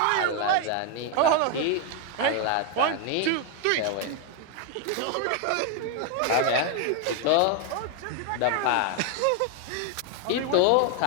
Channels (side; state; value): both; different; correlation 0.01